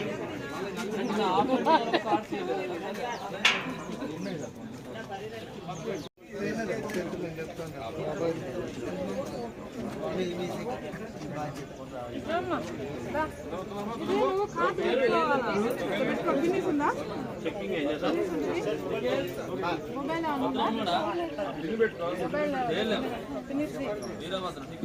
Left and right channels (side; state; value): both; identical; correlation 1.00